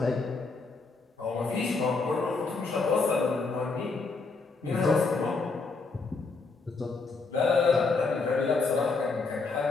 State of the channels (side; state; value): right; quieter; 4.1 dB